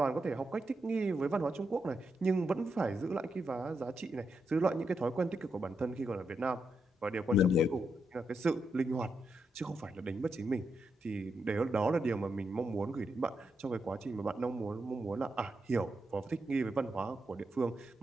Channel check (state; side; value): normal; both; correlation 0.83